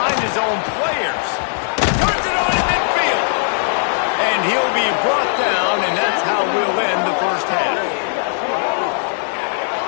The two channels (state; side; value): silent; right; 60 dB below the other